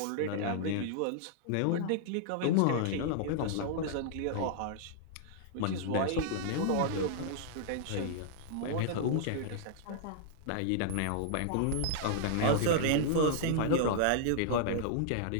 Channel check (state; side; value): different; both; correlation -0.01